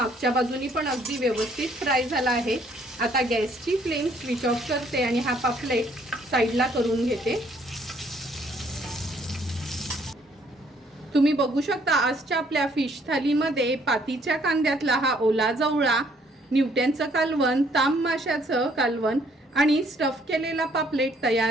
बाजूनी पण अगदी व्यवस्थित फ्राय झाला आहे. आता गॅसची फ्लेम स्विच ऑफ करते आणि हा पापलेट साईडला करून घेते. तुम्ही बघू शकता आजच्या आपल्या फिश थालीमध्ये पातीच्या कांद्यातला हा ओला जवळा, न्यूटनचं कालवण, ताम माशाचं कालवण आणि स्टफ केलेला पापलेट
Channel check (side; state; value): both; normal; correlation 0.65